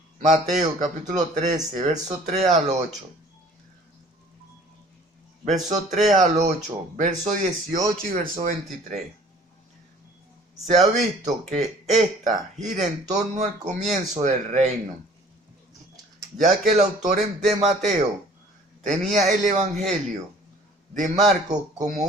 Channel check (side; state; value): both; normal; correlation 0.52